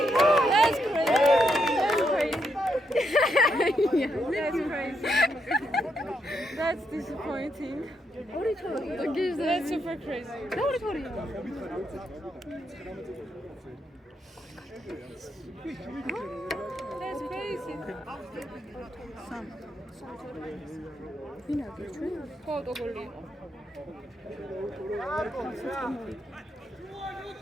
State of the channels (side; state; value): both; normal; correlation 0.79